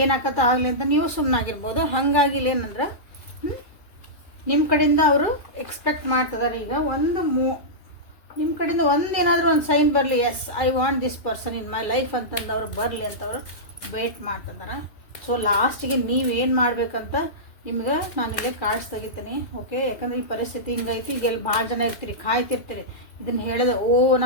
ಏನಾಕತ್ತ ಆಗಲಿ ಅಂತ ನೀವು ಸುಮ್ಮನಾಗಿರ್ಬೋದು. ಹಾಗಾಗಿ ಇಲ್ಲೇನಂದ್ರೆ ನಿಮ್ಮ ಕಡೆಯಿಂದ ಅವರು ಎಕ್ಸ್ಪೆಕ್ಟ್ ಮಾಡ್ತಿದ್ದಾರೆ ಈಗ ನಿಮ್ಮ ಕಡೆಯಿಂದ ಒಂದೇನಾದರೂ ಒಂದು ಸೈನ್ ಬರಲಿ, yes I want this person in my life ಅಂತಂದು ಅವ್ರು ಬರಲಿ ಅಂತ ಅವರು ವೇಟ್ ಮಾಡ್ತಿದ್ದಾರೆ. ಸೊ ಲಾಸ್ಟಿಗೆ ನೀವೇನು ಮಾಡಬೇಕಂತ ನಿಮ್ಗೆ ನಾನು ಇಲ್ಲೇ ಕಾರ್ಡ್ಸ್ ತೆಗಿತೀನಿ. ಓಕೆ, ಯಾಕಂದ್ರೆ ಈ ಪರಿಸ್ಥಿತಿ ಹಿಂಗೈತಿ, ಈಗ ಎಲ್ಲಿ ಭಾಳ ಜನ ಇರ್ತೀರಿ, ಕಾಯ್ತಿರ್ತೀರಿ, ಇದನ್ನು ಹೇಳಿದೆ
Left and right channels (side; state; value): right; late; 2.4 ms